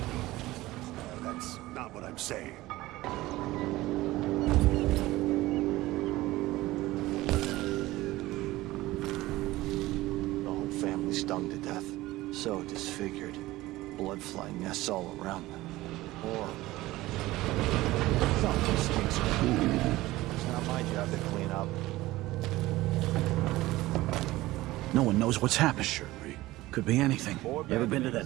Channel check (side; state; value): left; quieter; 17.9 dB